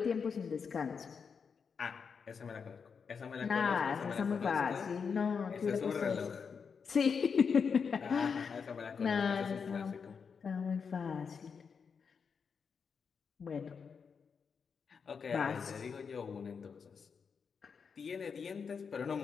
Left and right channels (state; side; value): quieter; right; 6.0 dB